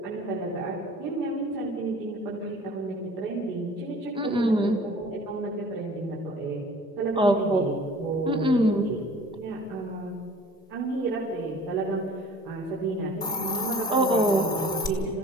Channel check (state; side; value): normal; both; correlation 0.47